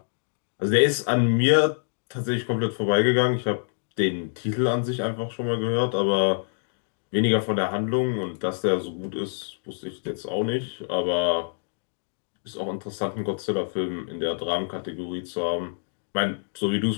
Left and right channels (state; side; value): silent; right; digital silence